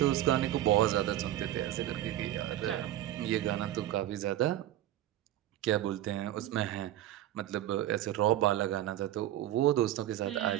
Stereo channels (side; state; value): left; quieter; 13.1 dB